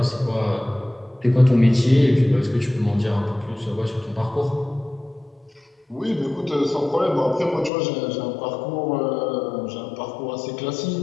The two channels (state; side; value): drops out; right; at 7.7 s